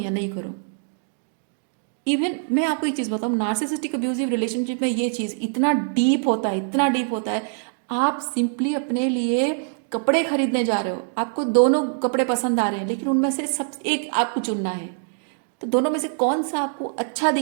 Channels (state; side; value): silent; left; digital silence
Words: नहीं करूँ। इवन मैं आपको एक चीज़ बताऊँ, नार्सिसिस्टिक अब्यूजिव रिलेशनशिप में ये चीज़ इतना डीप होता है, इतना डीप होता है। आप सिंपली अपने लिए कपड़े खरीदने जा रहे हो, आपको दोनों कपड़े पसंद आ रहे हैं, लेकिन उनमें से सब एक आपको चुनना है, तो दोनों में से कौन सा आपको अच्छा